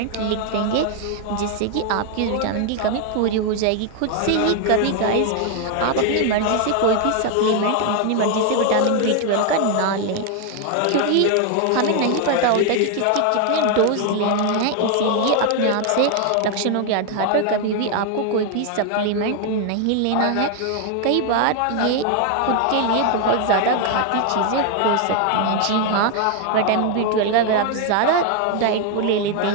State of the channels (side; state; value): both; different; correlation 0.01